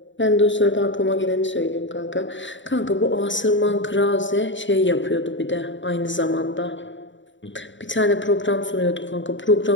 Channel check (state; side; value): late; right; 0.54 ms